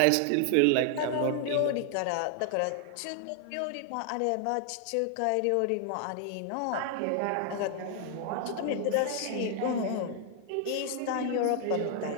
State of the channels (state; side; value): different; both; correlation 0.00